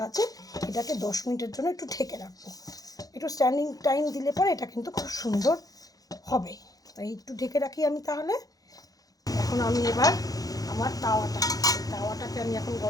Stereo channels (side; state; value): right; late; 0.18 ms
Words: এটাকে 10 মিনিটের জন্য একটু ঢেকে রাখবো। একটু স্ট্যান্ডিং টাইম দিলে পরে এটা কিন্তু খুব সুন্দর হবে। তাই একটু ঢেকে রাখি আমি তাহলে। এখন আমি এবার আমার তাওয়াটাকে আমি এখন